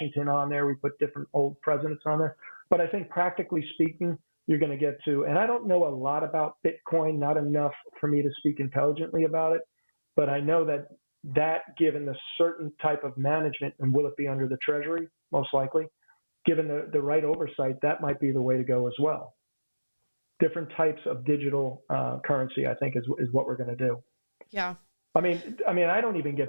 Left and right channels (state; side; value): inverted; both; correlation -1.00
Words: on there. We put different old presidents on there. But I think practically speaking, you're going to get to, and I don't know a lot about Bitcoin, not enough for me to speak intelligently about it, but I know that given the certain type of management, and will it be under the Treasury, most likely, given the right oversight, that might be the way to go as well. Different types of digital currency, I think, is what we're going to do. Yeah. I mean, I don't even